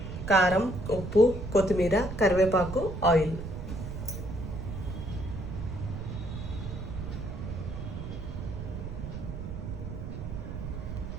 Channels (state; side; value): noise; right; rumble, 7 dB below the sound